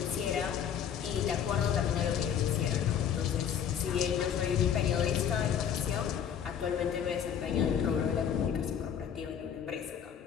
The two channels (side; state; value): right; quieter; 8.5 dB